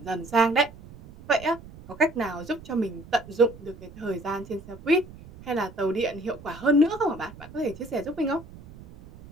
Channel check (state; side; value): noise; right; rumble, 18 dB below the sound